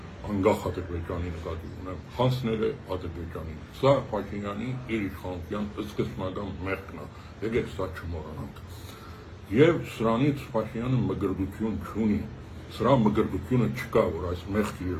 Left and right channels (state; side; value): identical; both; correlation 1.00